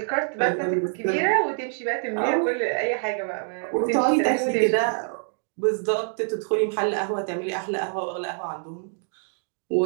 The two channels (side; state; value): left; silent; 61 dB below the other